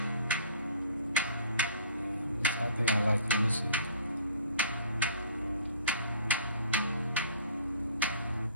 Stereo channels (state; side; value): inverted; both; correlation -0.51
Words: I think I like it. Let me see.